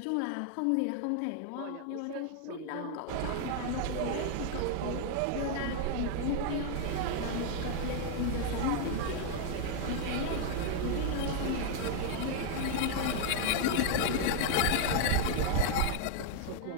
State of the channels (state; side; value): different; both; correlation 0.00